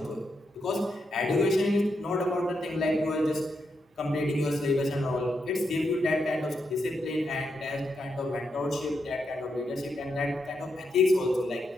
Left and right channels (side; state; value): both; normal; correlation 0.83